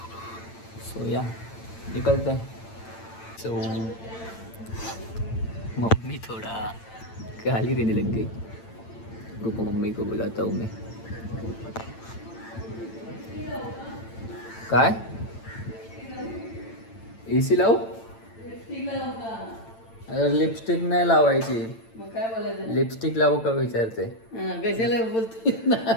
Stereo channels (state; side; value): late; right; 8.9 ms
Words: सो या निकलते हैं। सो मम्मी थोड़ा गाली देने लग गई, रुको मम्मी को बुलाता हूँ मैं। काय एसी लावू? अरे लिपस्टिक नाही लावायची, मग काय बोलायचं? लिपस्टिक लावू का विचारते? कशाला बोलतोय ना